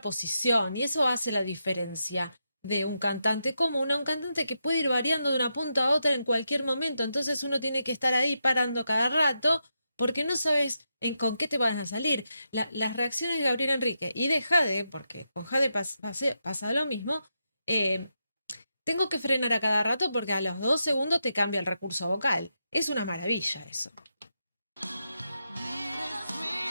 Y eso hace la diferencia de un cantante común a un cantante que puede ir variando de una punta a otra en cualquier momento. Entonces uno tiene que estar ahí parando cada rato porque no sabes con qué te van a salir. Las reacciones de Gabriel Enrique y de Jade, porque con Jade pasa lo mismo, eh, tengo que frenar a cada rato porque a los 2 segundos te cambia el recurso vocal. Es una maravilla eso.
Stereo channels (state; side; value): inverted; both; correlation -0.85